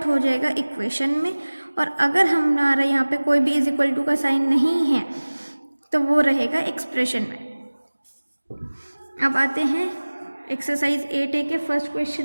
हो जाएगा इक्वेशन में, और अगर हमारा यहाँ पे कोई भी = का साइन नहीं है तो वो रहेगा एक्सप्रेशन में। अब आते हैं एक्सरसाइज 8A के फर्स्ट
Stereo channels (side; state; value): both; inverted; correlation -1.00